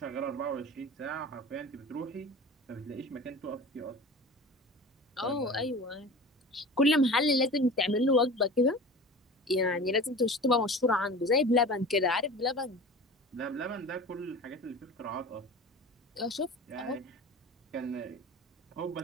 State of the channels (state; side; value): normal; both; correlation 0.36